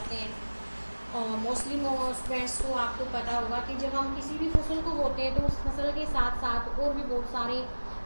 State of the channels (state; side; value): inverted; both; correlation -1.00